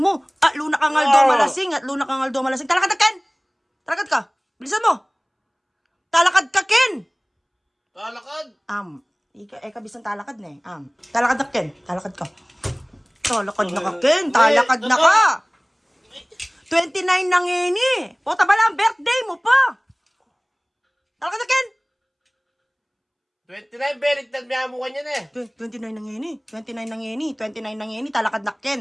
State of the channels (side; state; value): both; identical; correlation 1.00